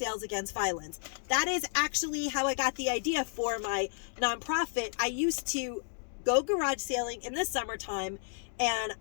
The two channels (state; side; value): silent; right; digital silence